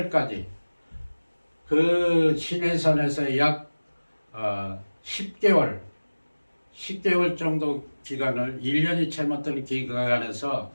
그 시내산에서 약 10개월 정도 기간을 1년이 채 못된 기간에서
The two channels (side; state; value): both; inverted; correlation -1.00